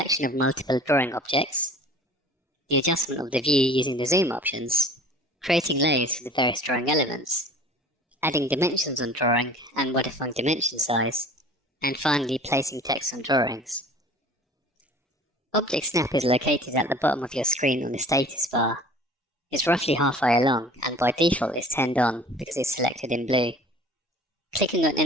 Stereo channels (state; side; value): normal; both; correlation 0.45